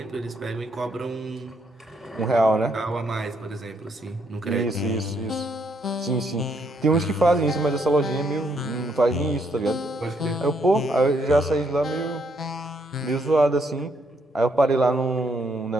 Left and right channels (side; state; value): both; normal; correlation 0.73